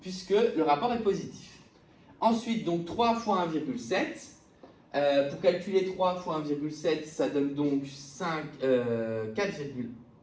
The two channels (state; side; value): identical; both; correlation 1.00